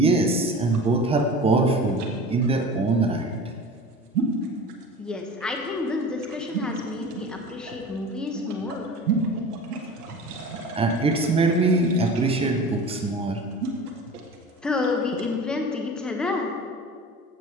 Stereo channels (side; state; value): both; normal; correlation 0.36